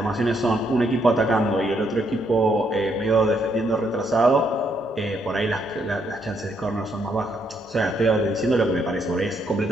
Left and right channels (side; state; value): both; normal; correlation 0.74